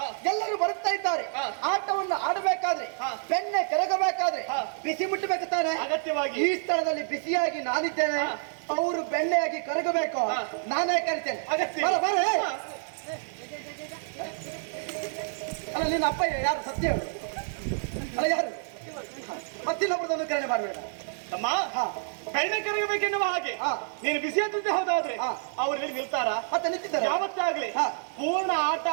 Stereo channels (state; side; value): silent; left; digital silence